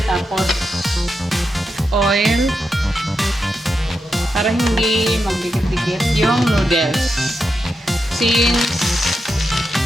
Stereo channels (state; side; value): normal; both; correlation 0.86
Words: Tapos, oil. Para hindi magdikit-dikit yung noodles. Since,